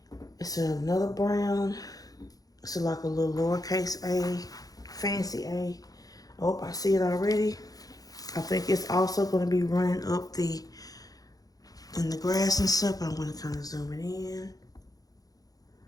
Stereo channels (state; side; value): late; right; 0.18 ms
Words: It's another brown. It's like a little lowercase a, fancy A. Oh, I see it already. I think it's also going to be running up in the grass and stuff. I'm going to kind of zoom it in.